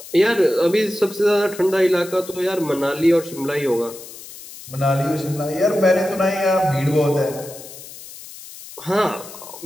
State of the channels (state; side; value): noise; left; hiss, 16 dB below the sound